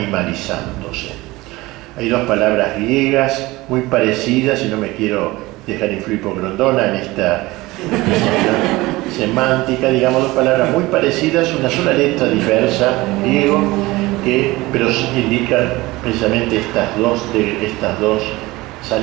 Hay dos palabras griegas muy parecidas, y no me quiero dejar influir por Grondona en esta semántica, digamos, dos palabras muy parecidas, una sola letra diversa, griego, pero indican precisamente estas dos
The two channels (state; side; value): quieter; left; 20.3 dB